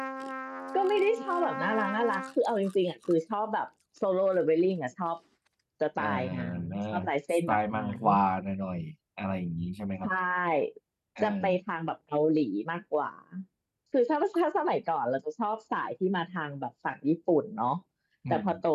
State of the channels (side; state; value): both; identical; correlation 1.00